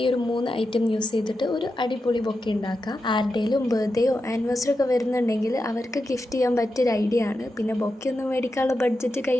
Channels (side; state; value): both; normal; correlation 0.89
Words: ഈ ഒരു 3 ഐറ്റം യൂസ് ചെയ്തിട്ട് ഒരു അടിപൊളി ബൊക്കെ ഉണ്ടാക്കാം. ആരുടെയും ബർത്ത്ഡേയോ ആനിവേഴ്സറി ഒക്കെ വരുന്നുണ്ടെങ്കിൽ അവർക്ക് ഗിഫ്റ്റ് ചെയ്യാൻ പറ്റിയൊരു ഐഡിയ ആണ്. പിന്നെ ബൊക്കെ ഒന്നും മേടിക്കാനുള്ള ബഡ്ജറ്റ്